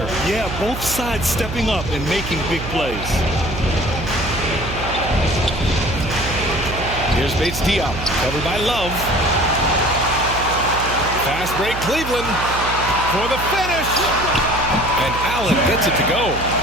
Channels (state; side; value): noise; right; hum, 8 dB below the sound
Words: Yeah, both sides stepping up and making big plays. Here's Bates Diop, covered by Love. Fast break, Cleveland for the finish. And Allen gets it to go.